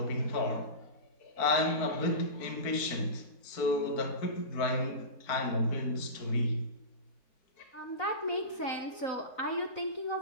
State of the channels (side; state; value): right; late; 4.0 ms